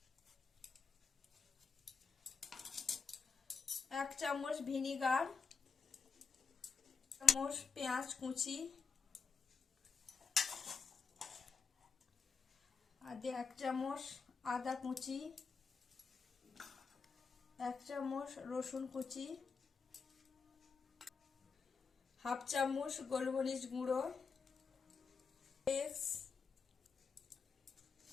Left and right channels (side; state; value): right; quieter; 5.3 dB